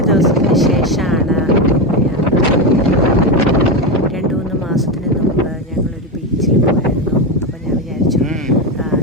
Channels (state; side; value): normal; both; correlation 0.13